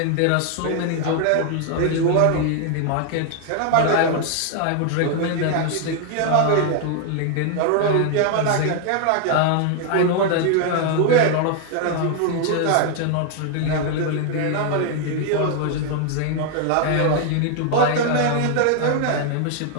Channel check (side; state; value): both; different; correlation 0.00